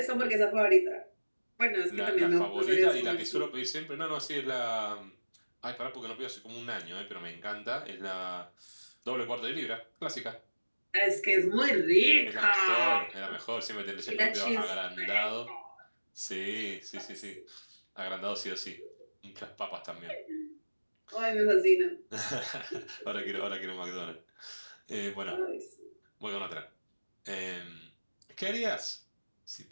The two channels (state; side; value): inverted; both; correlation -1.00